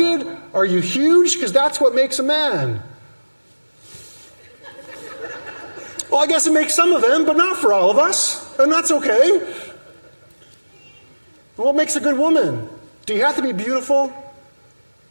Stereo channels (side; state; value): both; inverted; correlation -1.00